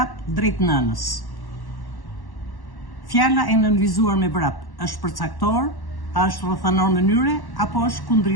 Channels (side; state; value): right; late; 1.1 ms